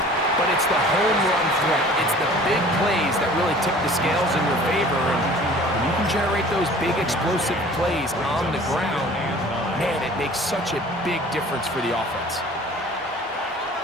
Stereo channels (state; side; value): normal; both; correlation 0.47